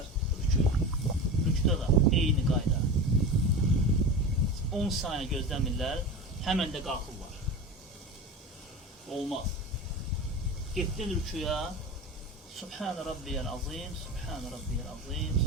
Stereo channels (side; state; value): both; normal; correlation 0.28